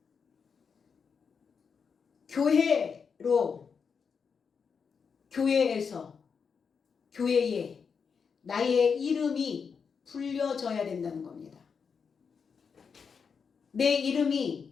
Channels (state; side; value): quieter; right; 6.0 dB